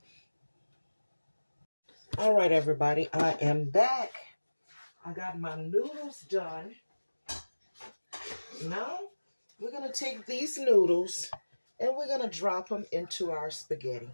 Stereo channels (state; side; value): inverted; both; correlation -1.00